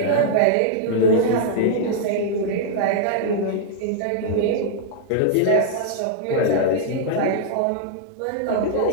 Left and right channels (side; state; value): both; different; correlation -0.01